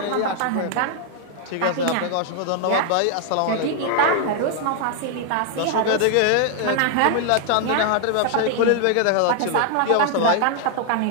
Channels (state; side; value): different; both; correlation 0.00